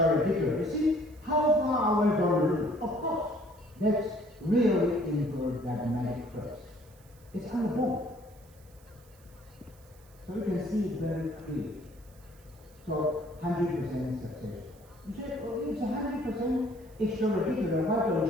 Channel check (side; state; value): right; noise; hiss, 28 dB below the sound